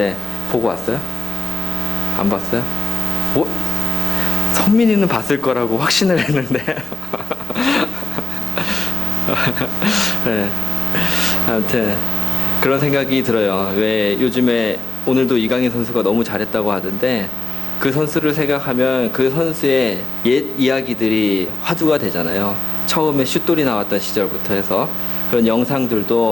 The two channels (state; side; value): normal; both; correlation 0.91